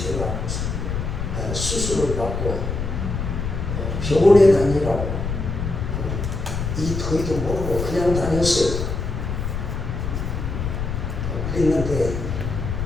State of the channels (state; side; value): noise; left; rumble, 3 dB below the sound